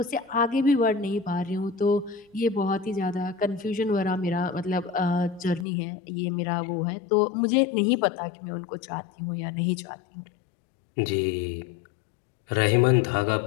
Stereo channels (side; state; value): right; drops out; at 5.7 s